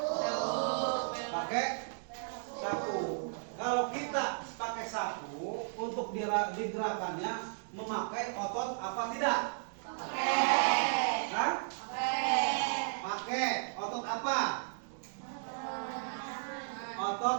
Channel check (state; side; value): silent; left; digital silence